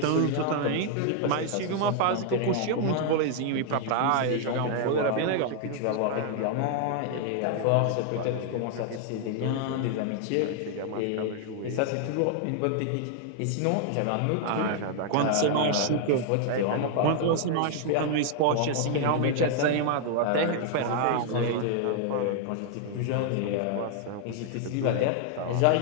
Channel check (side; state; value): both; different; correlation 0.00